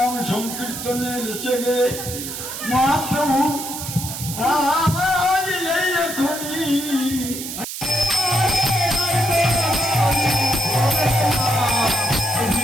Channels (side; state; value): right; noise; hiss, 7 dB below the sound